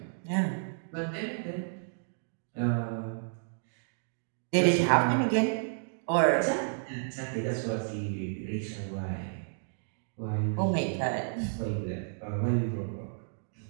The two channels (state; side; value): silent; left; digital silence